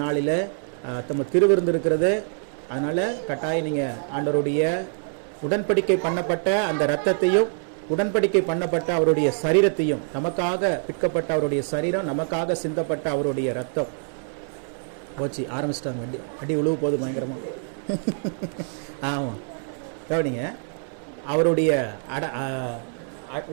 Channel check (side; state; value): left; silent; digital silence